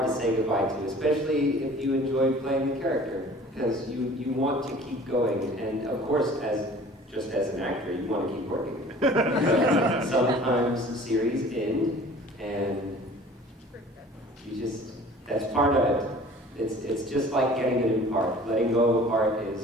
to say goodbye to, especially if you enjoy playing the character, because you want to keep going, and of course, just as an actor, you want to keep working. Sometimes series end, and that's part of it. It's just like getting a new part. Letting go of a part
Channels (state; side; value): normal; both; correlation 0.47